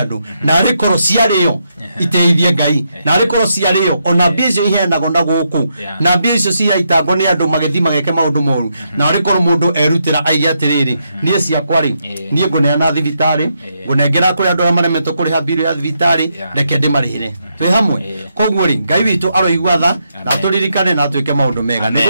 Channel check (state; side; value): inverted; both; correlation -0.80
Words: na rikoro ciario iteithie Ngai na rikoro ciario ona bizo iheanago na guku na bizo ciaitango ni andu magethi mageke maundu moru na rikoro mundu erutira aige atiriri nie ciakwa ri nie nguneana thibitari ngunengera kuri andu amaremetwo kuriha bill ya thibitari reke ndimarihire twi hamwe koguo ri Ngai witu aroigua tha na turirikane na twike maundu mega ni